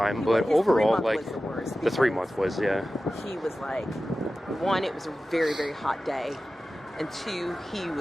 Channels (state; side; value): normal; both; correlation 0.95